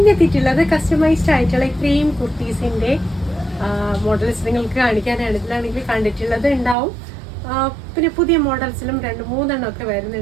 എത്തിയിട്ടുള്ളത് കസ്റ്റമൈസ്ഡ് ആയിട്ടുള്ള ഇത്രയും കുർത്തീസിൻ്റെ മോഡൽസ് നിങ്ങൾക്ക് കാണിക്കാനാണ്. ഇതിലാണെങ്കിൽ കണ്ടിട്ടുള്ളത് ഉണ്ടാവും. പിന്നെ പുതിയ മോഡൽസിലും രണ്ട് മൂന്നെണ്ണം ഒക്കെ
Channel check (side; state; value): left; drops out; at 6.8 s